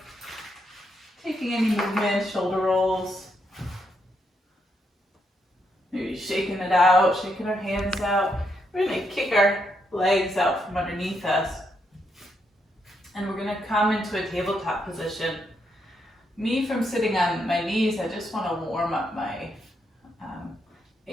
Taking any movement, shoulder rolls. Maybe shaking it out, shaking our hands out. We're going to kick our legs out from underneath us. And we're going to come into a tabletop position. Me, from sitting on my knees, I just want to warm up my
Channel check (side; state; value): both; normal; correlation 0.79